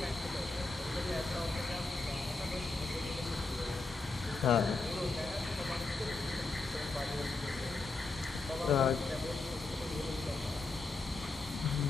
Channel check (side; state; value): right; quieter; 3.5 dB